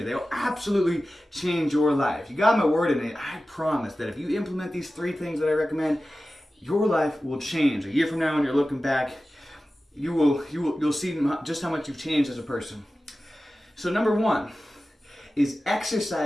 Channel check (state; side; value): normal; both; correlation 0.95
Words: They'll absolutely change your life. You got my word in it. I promise that if you implement these 3 things that I recommend, your life will change. A year from now when you're looking back, you'll see just how much you've changed as a person. So number 1 is